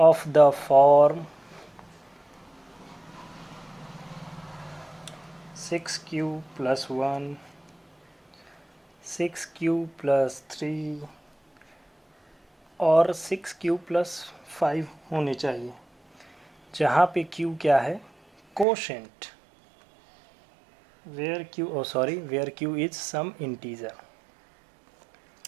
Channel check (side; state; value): left; drops out; at 18.7 s